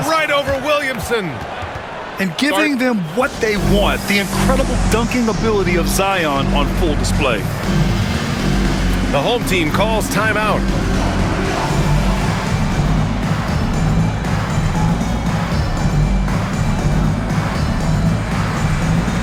right over Williamson. And giving them what they want, the incredible dunking ability of Zion on full display. The home team calls timeout.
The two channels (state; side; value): identical; both; correlation 1.00